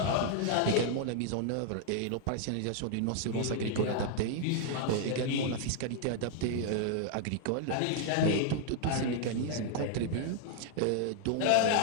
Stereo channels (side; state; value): both; different; correlation 0.00